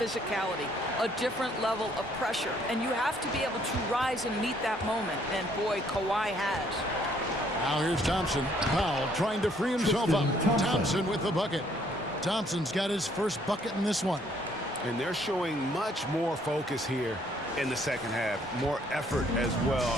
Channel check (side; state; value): both; normal; correlation 0.65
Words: a different level of pressure, and you have to be able to rise and meet that moment. And boy, Kawhi has. Now here's Thompson. Powell trying to free himself up. Thompson with the bucket. Thompson's got his first bucket in this one. And they're showing much more focus here in the second half. More effort as